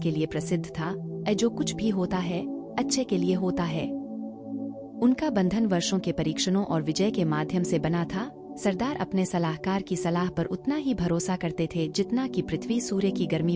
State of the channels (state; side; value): identical; both; correlation 1.00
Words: लिए प्रसिद्ध था, जो कुछ भी होता है अच्छे के लिए होता है। उनका बंधन वर्षों के परीक्षणों और विजय के माध्यम से बना था। सरदार अपने सलाहकार की सलाह पर उतना ही भरोसा करते थे जितना कि पृथ्वी सूर्य की गर्मी